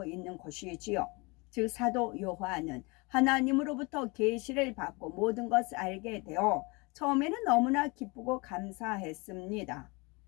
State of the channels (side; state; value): right; quieter; 27.4 dB